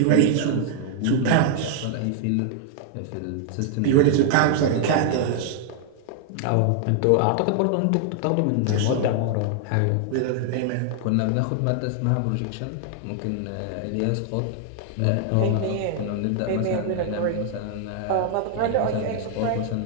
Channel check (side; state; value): both; different; correlation 0.00